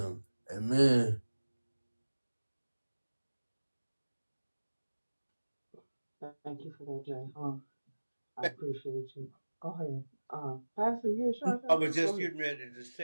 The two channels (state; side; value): inverted; both; correlation -1.00